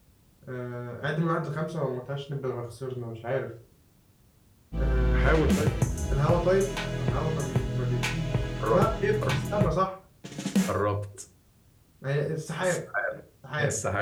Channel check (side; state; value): both; identical; correlation 1.00